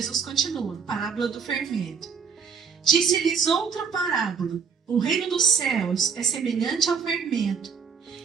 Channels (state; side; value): quieter; left; 6.2 dB